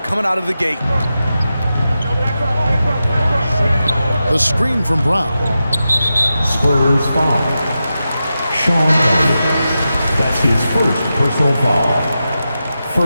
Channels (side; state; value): both; inverted; correlation -0.91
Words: coming out of the gate. The screen from Brown. Spurs foul. Sean Elliott. That's his first personal foul.